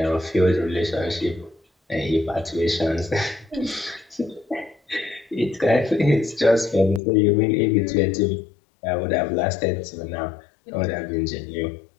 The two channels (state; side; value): drops out; right; at 7.0 s